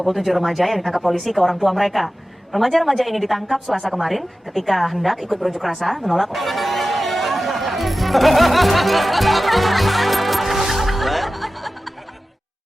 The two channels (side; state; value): both; normal; correlation 0.95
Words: remaja yang ditangkap polisi ke orang tua mereka. Remaja-remaja ini ditangkap Selasa kemarin ketika hendak ikut berunjuk rasa menolak.